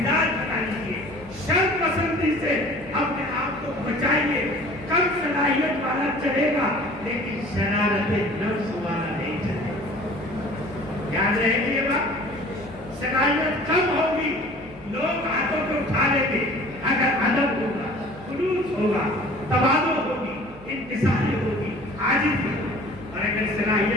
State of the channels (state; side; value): noise; left; hum, 20 dB below the sound